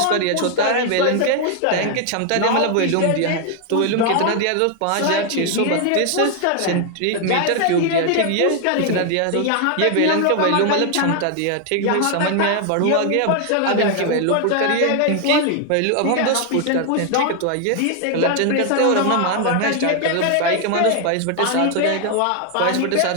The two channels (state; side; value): different; both; correlation 0.00